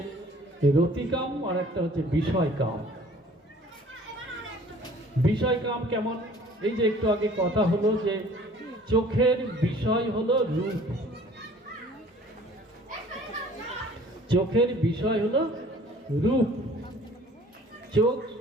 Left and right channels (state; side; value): normal; both; correlation 0.52